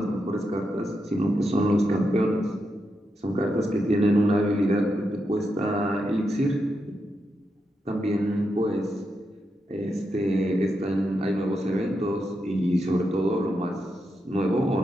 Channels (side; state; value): both; normal; correlation 0.85